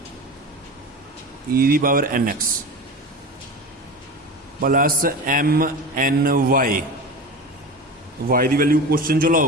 e दी power n x plus m n y, y की वैल्यू क्वेश्चन चो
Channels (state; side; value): normal; both; correlation 0.30